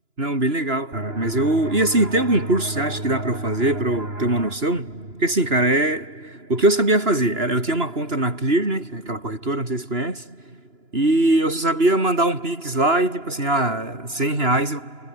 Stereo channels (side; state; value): left; late; 2.9 ms